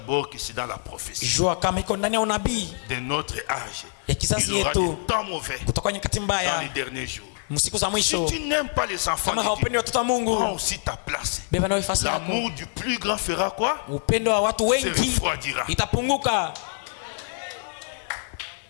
que c'est dans la prophétie jua kama iko ndani ya unabii de notre âge. ya kizazi Il y aura yetu des temps mauvais kutoka nyakati dans mbaya les derniers jours. msiku za Si mwisho. tu n'aimes pas les enfants Kama de haupendi Dieu, watoto wa Mungu, prends aussi ta place. beba nawe nafasi yako. L'amour du plus grand fera quoi? Upendo wa watu Se wengi refroidira. itapunguka.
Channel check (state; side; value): silent; right; digital silence